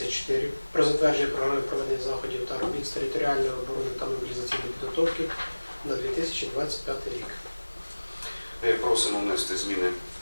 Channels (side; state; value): both; inverted; correlation -1.00